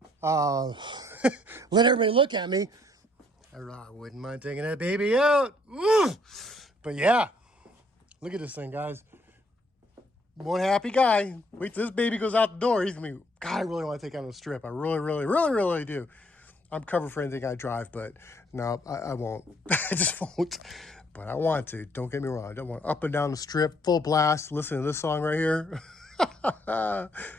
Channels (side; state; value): both; normal; correlation 0.66